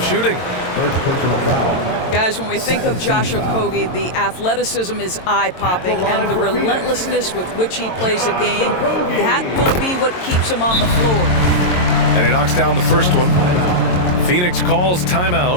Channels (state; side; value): late; right; 22 ms